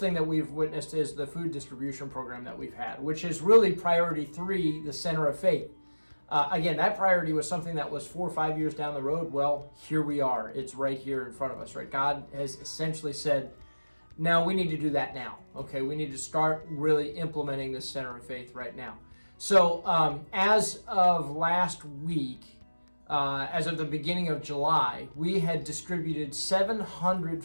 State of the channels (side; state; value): both; inverted; correlation -1.00